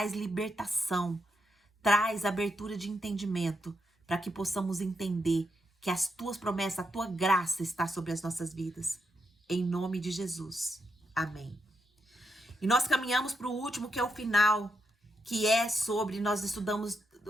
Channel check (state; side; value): normal; both; correlation 0.82